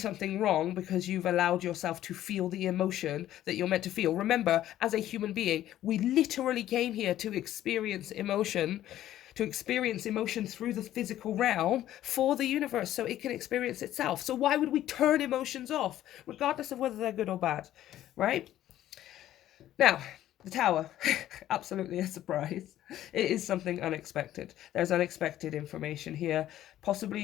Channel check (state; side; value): quieter; right; 12.9 dB